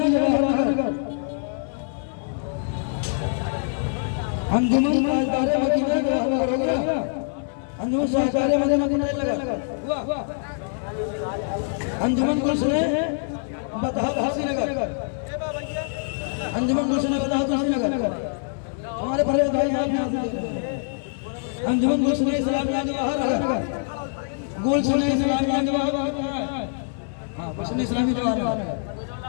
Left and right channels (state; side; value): silent; right; 62 dB below the other